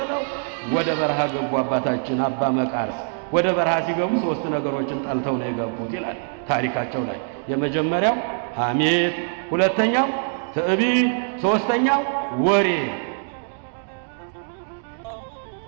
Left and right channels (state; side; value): silent; left; 62 dB below the other